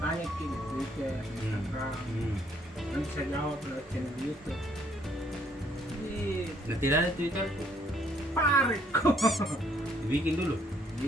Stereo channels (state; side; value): normal; both; correlation 0.66